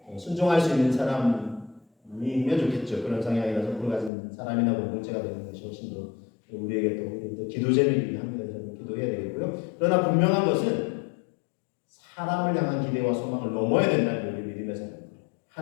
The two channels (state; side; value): drops out; right; at 4.1 s